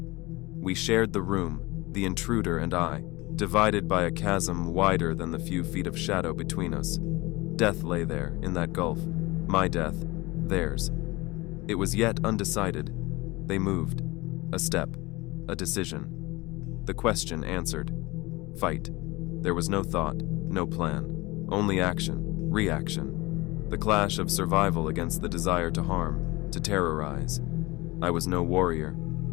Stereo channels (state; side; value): quieter; right; 22.2 dB